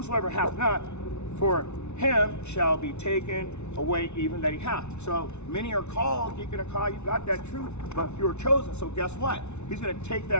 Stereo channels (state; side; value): late; right; 0.82 ms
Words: hath not, for him shall be taken away even that he hath. So many are called, Deacon Hakah, you got that truth, but few are chosen. So guess what? He's going to take